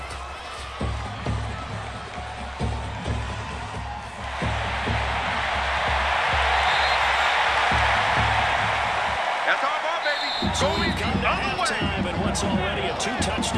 So we've come to halftime in what's already a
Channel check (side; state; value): both; identical; correlation 1.00